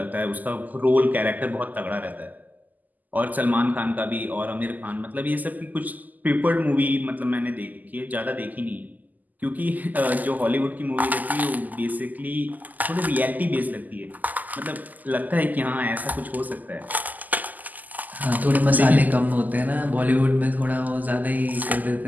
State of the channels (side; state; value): left; late; 0.082 ms